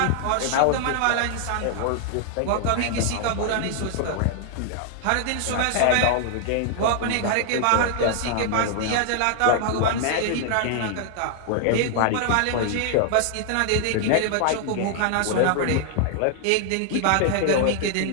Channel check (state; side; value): different; both; correlation 0.00